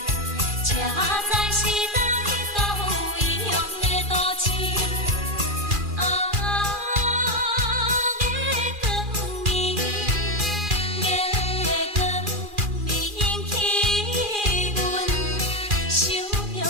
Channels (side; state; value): left; late; 2.4 ms